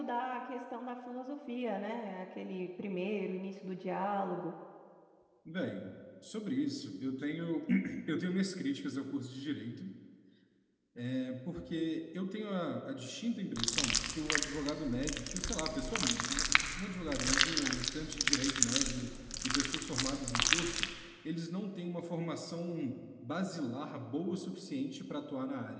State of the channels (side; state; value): both; identical; correlation 1.00